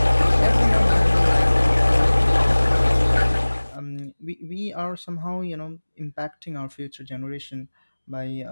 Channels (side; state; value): both; inverted; correlation -1.00